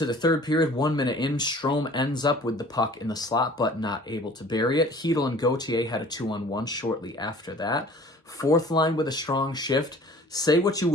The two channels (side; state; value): both; normal; correlation 0.48